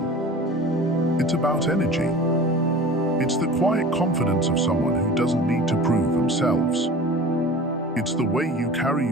It's about energy. It's the quiet confidence of someone who doesn't need to prove themselves. It's the way you carry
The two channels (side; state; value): both; normal; correlation 0.39